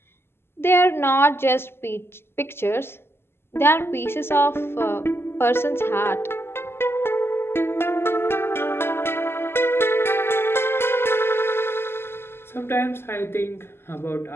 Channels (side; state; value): right; late; 0.12 ms